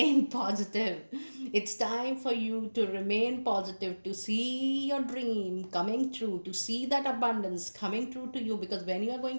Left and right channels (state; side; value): inverted; both; correlation -1.00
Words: positive. It's time for you to remain positive, to see your dream coming true, to see that abundance coming true to you, because when you are